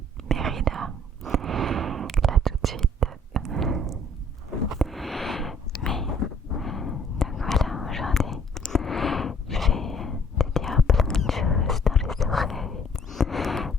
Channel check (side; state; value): both; normal; correlation 0.59